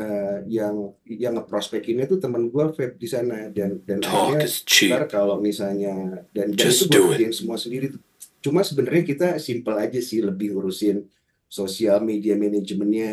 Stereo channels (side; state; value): both; identical; correlation 1.00